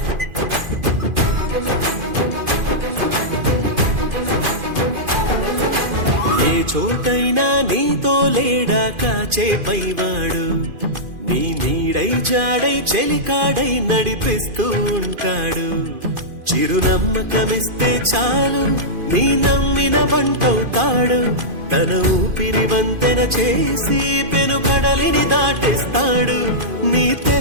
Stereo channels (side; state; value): left; late; 2.5 ms